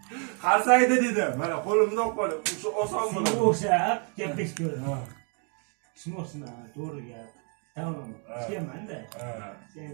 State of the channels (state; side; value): quieter; left; 39.9 dB